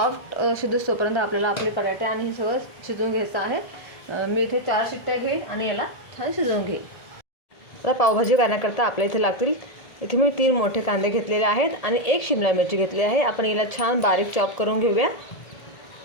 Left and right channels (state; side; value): late; right; 1.8 ms